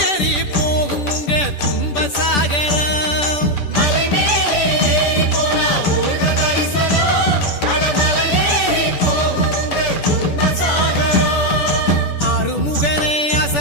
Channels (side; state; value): right; late; 10 ms